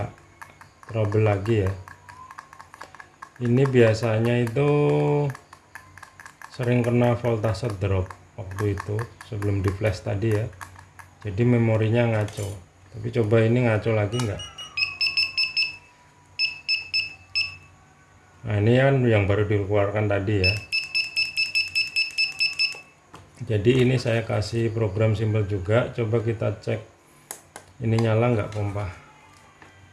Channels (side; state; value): both; identical; correlation 1.00